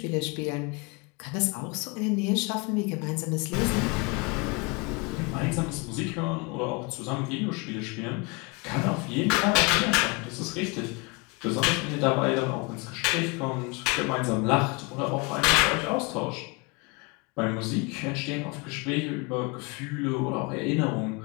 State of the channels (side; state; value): right; quieter; 28.2 dB